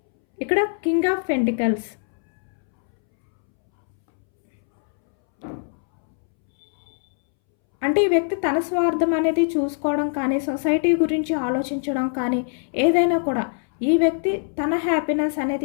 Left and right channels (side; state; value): right; silent; 64 dB below the other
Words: ఇక్కడ కింగ్ ఆఫ్ పెంటికల్స్ అంటే ఈ వ్యక్తి తన స్వార్థం అనేది చూసుకోవడం కానీ, సొసైటీ గురించి ఆలోచించడం కానీ, ఏదైనా కూడా ఈ వ్యక్తి తన హ్యాపీనెస్